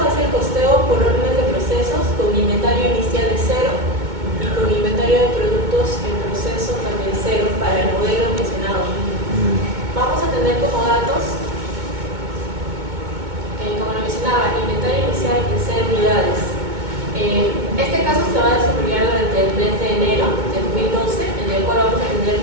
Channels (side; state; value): left; late; 2.2 ms